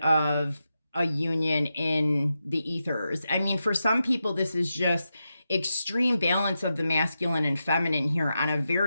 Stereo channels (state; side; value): inverted; both; correlation -0.88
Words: a union in the ethers. I mean, for some people, this is just extreme balance of the masculine and feminine here on a